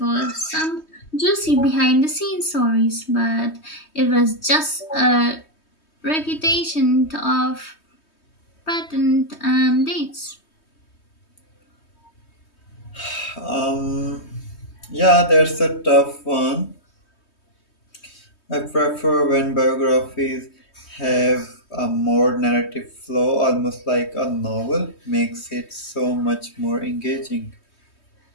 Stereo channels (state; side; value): late; right; 3.2 ms